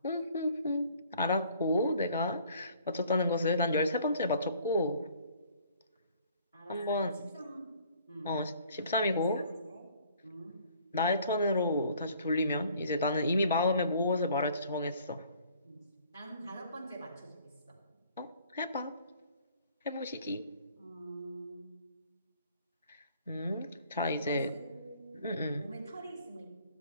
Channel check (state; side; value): inverted; both; correlation -0.57